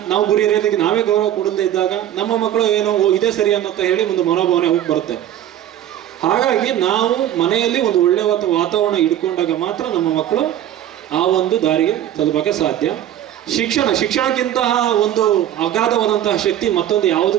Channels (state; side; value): quieter; left; 11.5 dB